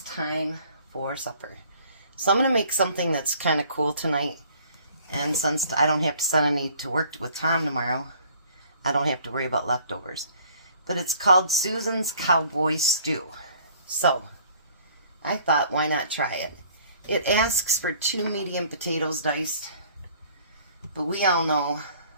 time for supper. So I'm going to make something that's kind of cool tonight, and since I don't have to send any to work with Tom tomorrow, I don't have to worry about leftovers. But it's called Susan's Cowboy Stew. So I thought, why not try it? It asks for 2 medium potatoes diced, but we all know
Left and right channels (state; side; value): inverted; both; correlation -0.55